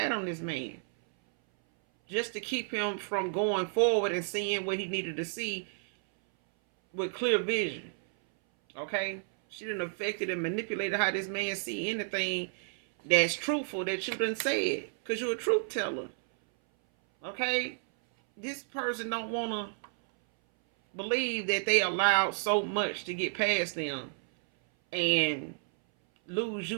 on this man. Just to keep him from going forward and seeing what he needed to see with clear vision. Okay? She done affected and manipulated how this man see anything that's truthful that you done said. Because you're a truth teller. Okay? This person don't want to believe that they allowed so much to get past them and lose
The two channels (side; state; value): left; silent; 57 dB below the other